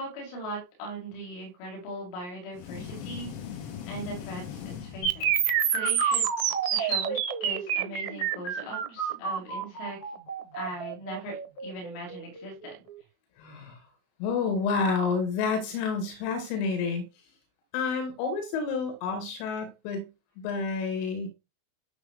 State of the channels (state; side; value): late; right; 28 ms